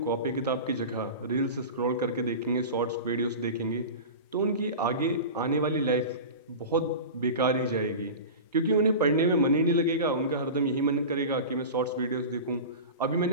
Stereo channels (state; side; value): inverted; both; correlation -0.31